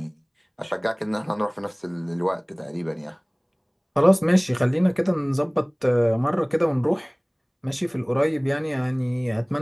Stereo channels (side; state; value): both; identical; correlation 1.00